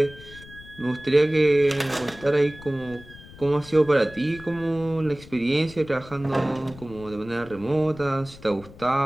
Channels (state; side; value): noise; left; rumble, 19 dB below the sound